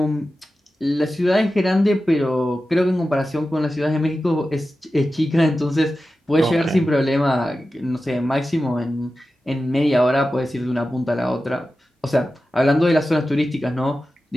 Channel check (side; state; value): both; normal; correlation 0.93